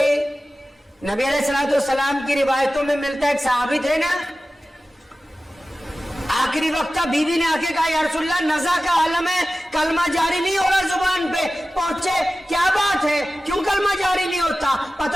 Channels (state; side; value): normal; both; correlation 0.95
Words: نبی علیہ السلام کی روایتوں میں ملتا ہے ایک صحابی تھے نا, آخری وقت کا بیوی نے آ کے کہا یا رسول اللہ نزا کا عالم ہے کلمہ جاری نہیں ہو رہا زبان پہ. پہنچے کیا بات ہے کیوں کلمہ جاری نہیں ہوتا؟